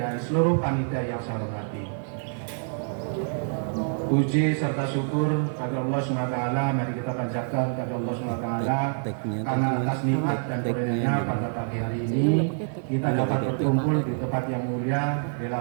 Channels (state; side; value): silent; left; digital silence